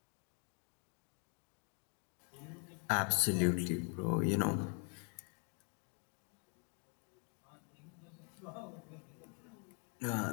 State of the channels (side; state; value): right; quieter; 37.7 dB